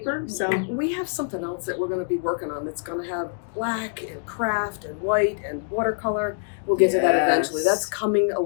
So we have something else that we're going to be working on that's going to have black and craft and white and watercolor. We'll get to that eventually. That's coming a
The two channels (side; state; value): right; silent; digital silence